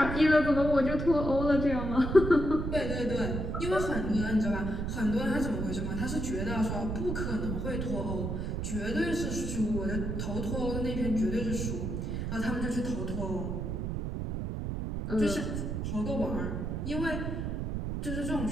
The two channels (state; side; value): noise; right; rumble, 2 dB below the sound